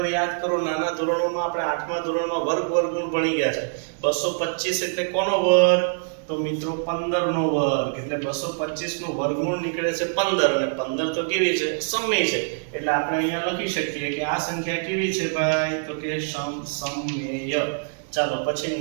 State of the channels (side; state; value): left; silent; digital silence